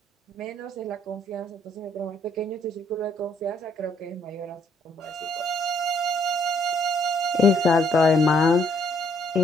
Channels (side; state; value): both; normal; correlation 0.68